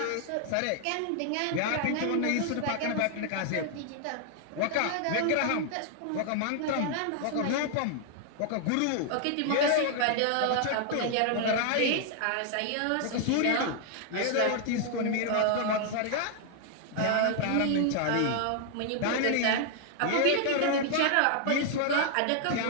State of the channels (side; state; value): both; different; correlation 0.00